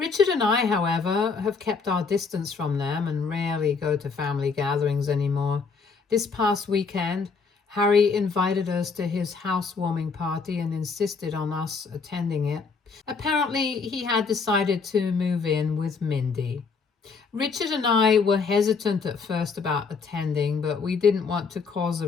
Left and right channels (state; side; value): quieter; right; 5.0 dB